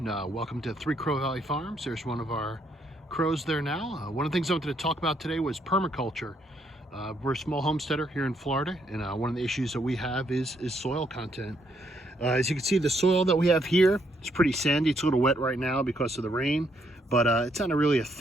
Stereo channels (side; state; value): both; normal; correlation 0.73